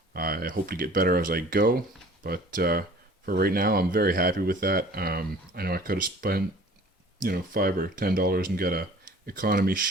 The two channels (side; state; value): both; normal; correlation 0.48